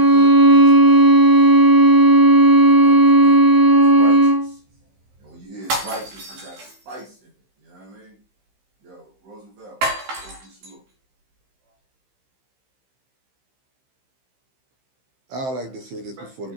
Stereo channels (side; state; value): left; late; 15 ms